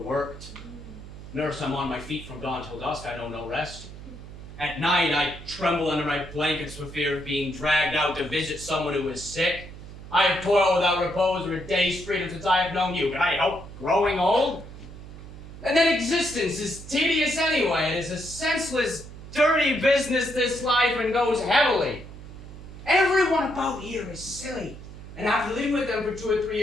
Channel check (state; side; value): noise; right; hum, 14 dB below the sound